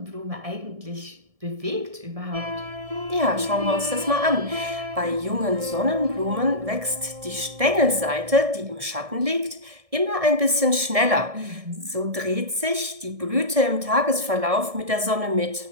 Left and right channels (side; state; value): left; late; 1.7 ms